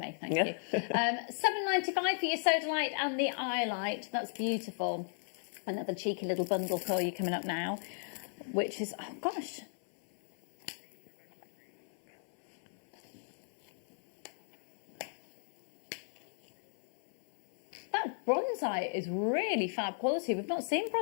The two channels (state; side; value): silent; right; 55 dB below the other